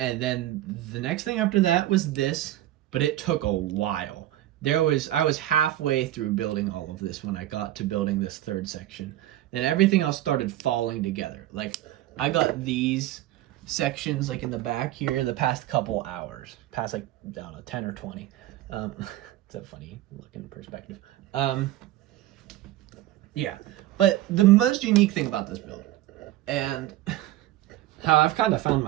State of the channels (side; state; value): left; quieter; 14.5 dB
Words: then the next thing after that was this, but it took a while. I was halfway through building all of this when I got to building this third section. Then everything else started falling together. Like, I got these sections like in the back here the past couple hours, past like, I don't know, 10 or 20. It's a funny looking perspective. Yeah, but the most unique thing about this build, and how I've kind of found